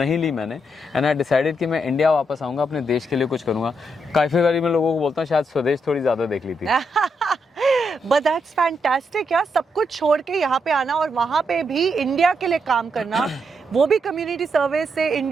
ली मैंने। एंड आई डिसाइडेड कि मैं इंडिया वापस आऊँगा, अपने देश के लिए कुछ करूँगा। काफ़ी बारी मैं लोगों को बोलता हूँ शायद स्वदेश थोड़ी ज़्यादा देख ली थी। बट दैट्स फैंटास्टिक यार, सब कुछ छोड़ के यहाँ पे आना और वहाँ पे भी इंडिया के लिए काम करना, वो भी कम्युनिटी सर्विस से।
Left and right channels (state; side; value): normal; both; correlation 0.80